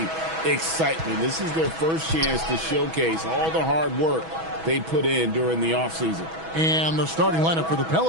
excitement. This is their first chance to showcase all the hard work they put in during the offseason. And the starting lineup for the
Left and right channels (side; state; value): left; late; 6.2 ms